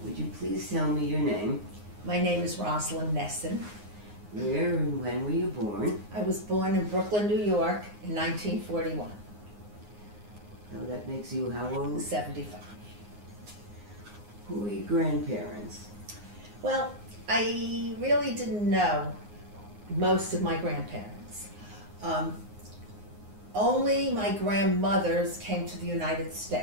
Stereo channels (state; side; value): late; left; 9.6 ms